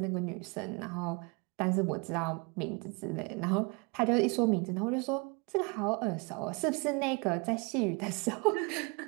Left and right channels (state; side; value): quieter; left; 31.1 dB